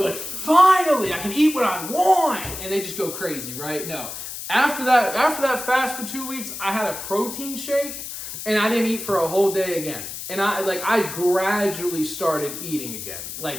like, finally I can eat what I want, and they just go crazy, right? No. After that fast for 2 weeks, I had a protein shake and I didn't eat for a whole day again. And I gradually started eating again,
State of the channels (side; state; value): left; noise; hiss, 8 dB below the sound